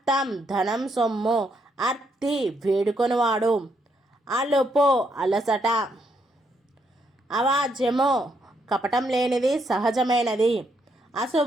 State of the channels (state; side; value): normal; both; correlation 0.76